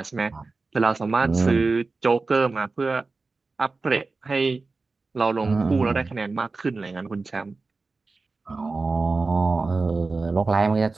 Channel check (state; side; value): quieter; left; 3.8 dB